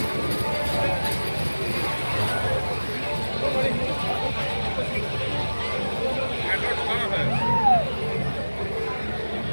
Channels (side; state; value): both; inverted; correlation -1.00